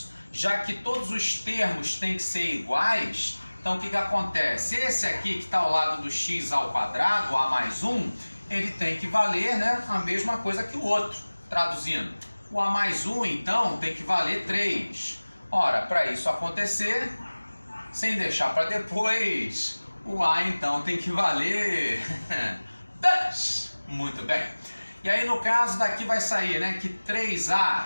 já que todos os termos têm que ser iguais, então o que acontece? Esse aqui que está ao lado do x ao quadrado, a mais 1, ele tem que valer, né, a mesma coisa que o outro. Traduzindo, o a mais 1, então, tem que valer 3. Ora, para isso acontecer, sem deixar para depois, o a então tem que valer 10. Muito bem. E aí no caso daqui vai sair, né, que 3a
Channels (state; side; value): inverted; both; correlation -1.00